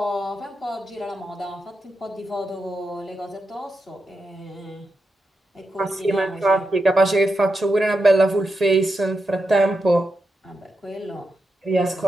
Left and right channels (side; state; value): both; normal; correlation 0.87